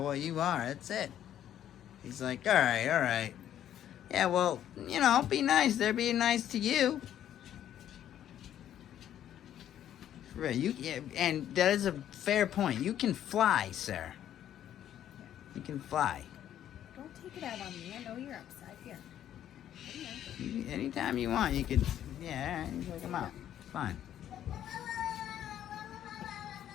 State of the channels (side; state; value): right; quieter; 10.9 dB